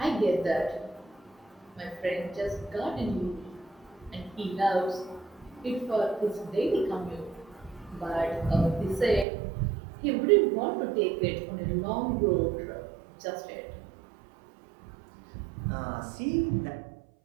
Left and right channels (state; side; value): drops out; left; at 9.2 s